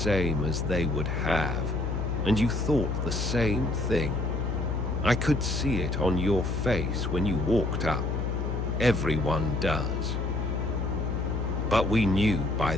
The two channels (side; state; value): left; noise; hum, 1 dB below the sound